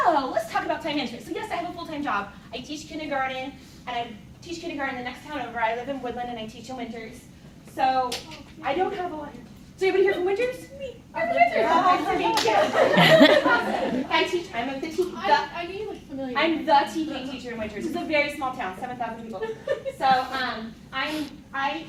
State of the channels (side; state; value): both; identical; correlation 1.00